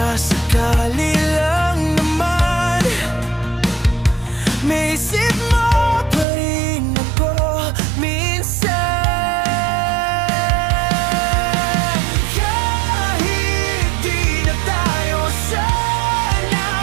sakali lang naman may isip mo pa rin ako minsan. Kahit di na tayo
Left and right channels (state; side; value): drops out; left; at 6.2 s